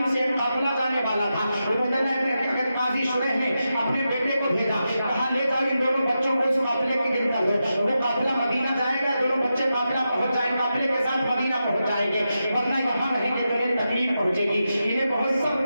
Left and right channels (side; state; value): both; inverted; correlation -0.89